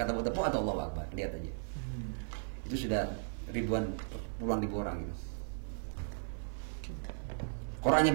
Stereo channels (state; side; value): silent; left; 53 dB below the other